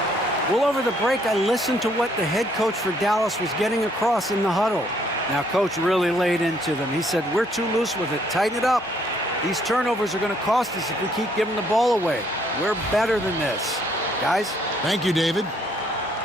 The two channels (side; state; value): both; normal; correlation 0.67